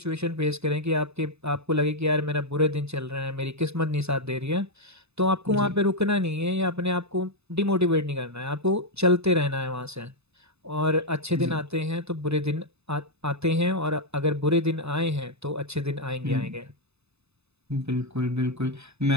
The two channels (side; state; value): left; late; 0.80 ms